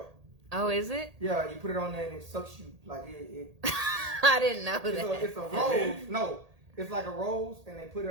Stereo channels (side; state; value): left; late; 1.8 ms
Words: Oh, is it? Yeah, you put it on there and it sucks you like it I didn't know that. it's a rose. No, it's like a rose, and they put